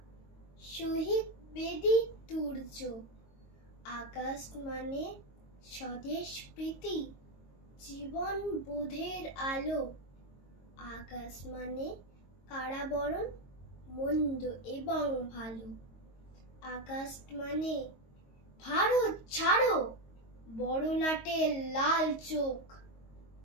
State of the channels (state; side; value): late; right; 22 ms